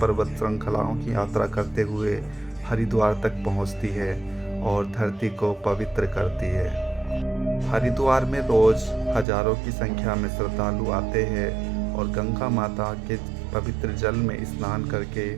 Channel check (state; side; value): drops out; left; at 9.2 s